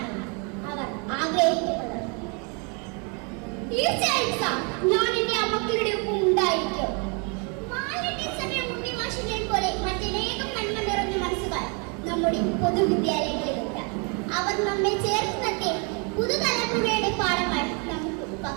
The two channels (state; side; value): quieter; left; 34.7 dB